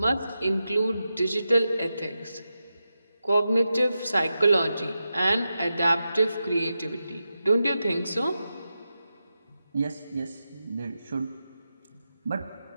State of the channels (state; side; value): inverted; both; correlation -0.90